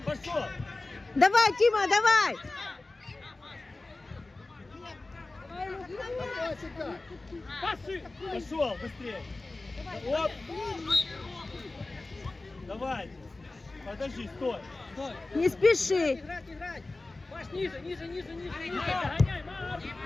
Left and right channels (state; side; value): quieter; right; 3.2 dB